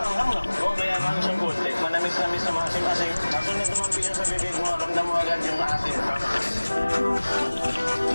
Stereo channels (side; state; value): both; inverted; correlation -1.00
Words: hang. Oo, kaya ano siyang good. Like, manamis-namis na maasim-asim. Kaso na tumampi siya sa bibig mo, ramdam mo agad yung asim.